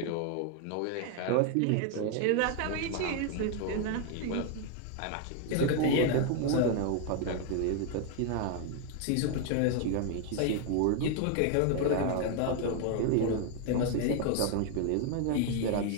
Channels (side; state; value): both; different; correlation 0.00